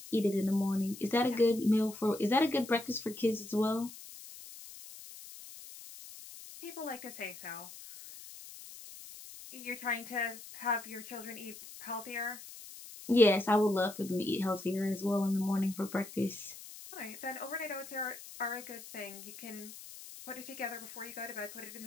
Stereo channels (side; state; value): left; noise; hiss, 15 dB below the sound